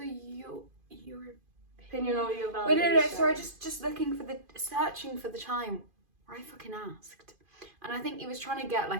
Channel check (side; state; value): left; late; 2.5 ms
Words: your opinion or your validation? Wait, no, sorry, just searching for the time where I fucking asked. And I think he was trying to get